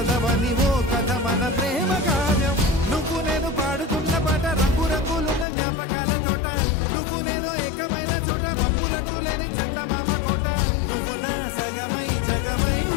ఓ కథ మన ప్రేమ కావ్యం నువ్వు నేను పాడుతున్న పాట రంగు రంగులున్న జ్ఞాపకాల తోట నువ్వు నేను ఏకమైన చోట మబ్బులట్టు లేని చందమామ కోట నువ్వు నా సగమై జగమై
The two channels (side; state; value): right; drops out; at 5.5 s